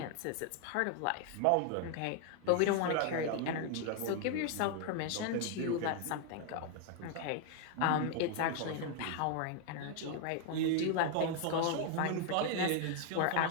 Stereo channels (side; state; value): both; different; correlation 0.00